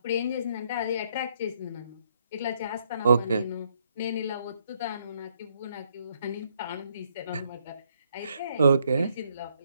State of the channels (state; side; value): inverted; both; correlation -0.73